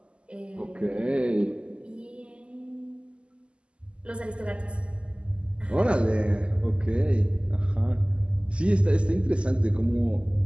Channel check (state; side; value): late; left; 0.052 ms